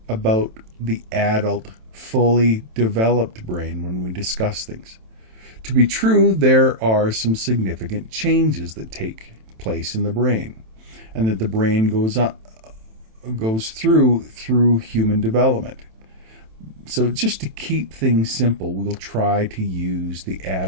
about the adult, fully developed brain when we discuss things. To be true, there are some significant changes that take place in the brain, and that the brain goes through human development. So just to keep things simple, we'll try to use the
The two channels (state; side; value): late; left; 27 ms